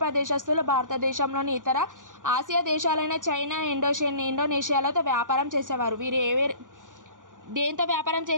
దేశస్తులు భారతదేశంలోని ఇతర ఆసియా దేశాలైన చైనా, ఇండోనేషియాలతో వ్యాపారం చేసేవారు. వీరు దేంతో వ్యాపారం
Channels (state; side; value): late; left; 0.88 ms